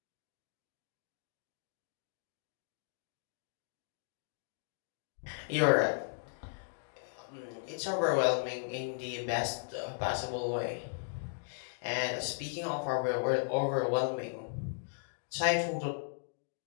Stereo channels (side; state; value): right; silent; digital silence